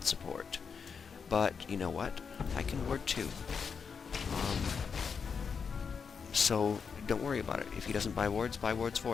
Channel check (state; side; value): quieter; right; 6.0 dB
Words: support. But, you know what? I can ward too. So, don't worry about it. If he doesn't buy wards